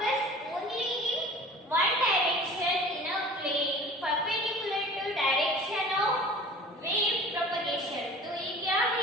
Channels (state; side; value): normal; both; correlation 0.43